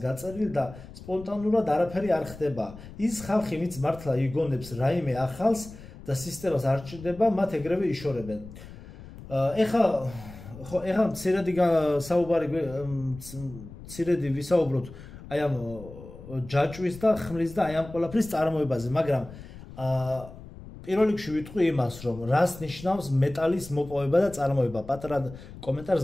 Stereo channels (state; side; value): noise; left; rumble, 16 dB below the sound